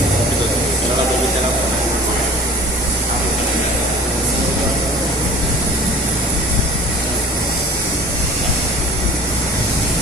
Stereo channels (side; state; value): both; normal; correlation 0.44